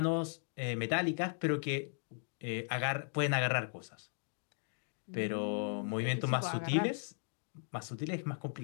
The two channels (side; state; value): right; silent; digital silence